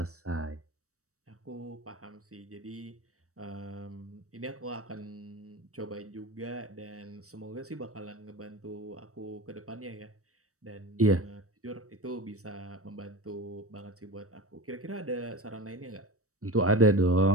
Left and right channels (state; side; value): late; left; 0.65 ms